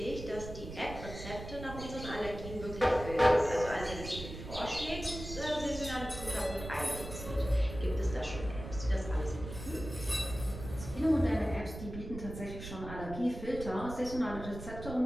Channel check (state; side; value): noise; right; rumble, 10 dB below the sound